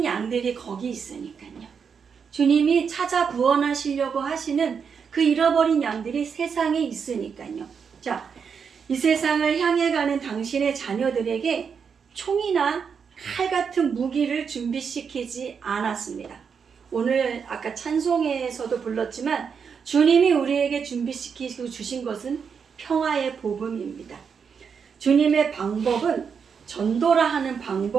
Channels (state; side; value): quieter; left; 6.4 dB